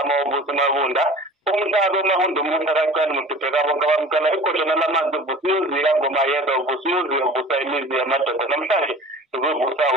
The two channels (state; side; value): normal; both; correlation 0.42